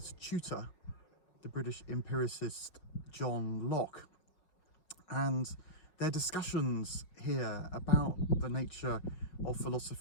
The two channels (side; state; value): right; late; 5.5 ms